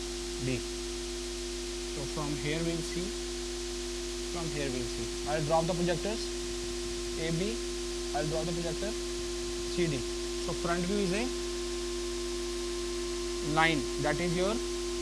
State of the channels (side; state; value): both; identical; correlation 1.00